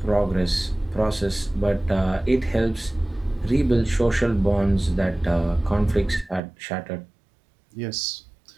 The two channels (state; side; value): drops out; left; at 6.4 s